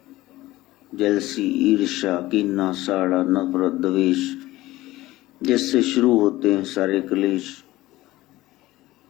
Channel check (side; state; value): right; quieter; 17.5 dB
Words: जलसी ईर्ष्या कीना साड़ा नफरत द्वेष, जिससे शुरू होते हैं सारे क्लेश।